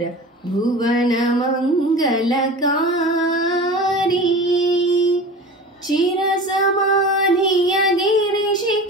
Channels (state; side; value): normal; both; correlation 0.35